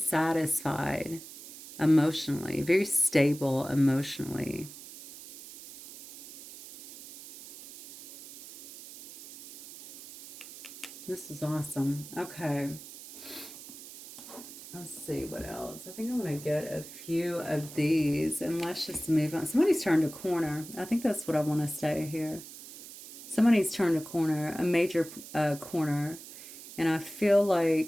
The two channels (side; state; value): right; noise; hiss, 15 dB below the sound